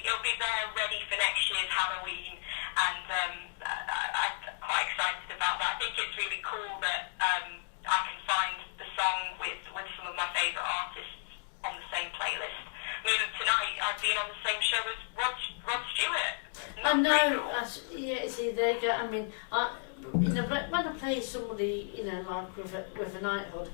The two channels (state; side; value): silent; right; digital silence